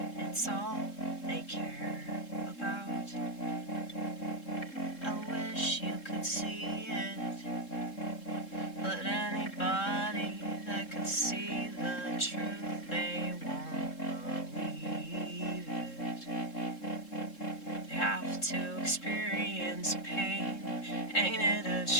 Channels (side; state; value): right; late; 3.7 ms